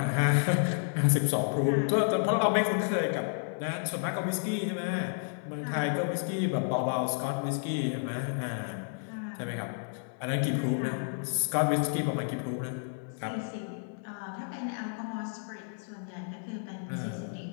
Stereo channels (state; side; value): silent; right; digital silence